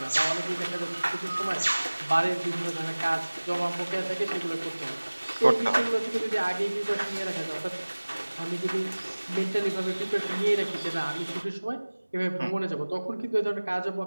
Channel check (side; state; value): both; inverted; correlation -1.00